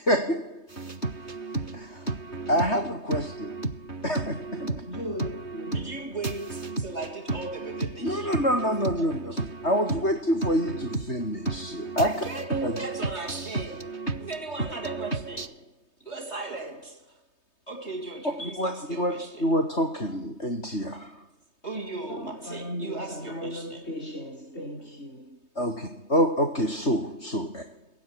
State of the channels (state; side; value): late; right; 3.2 ms